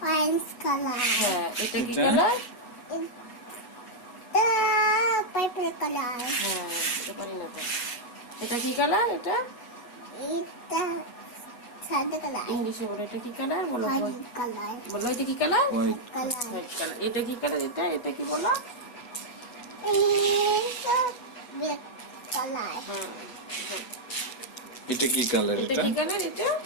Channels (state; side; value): late; right; 8.1 ms